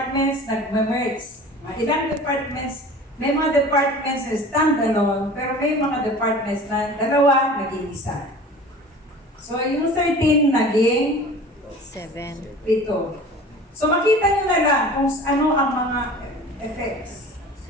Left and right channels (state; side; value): normal; both; correlation 0.41